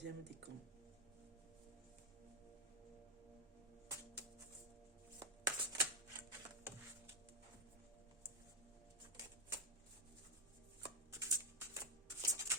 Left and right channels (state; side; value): normal; both; correlation 0.04